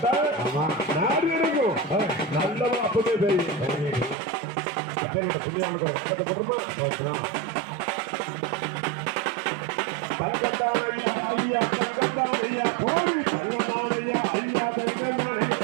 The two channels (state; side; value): drops out; left; at 4.2 s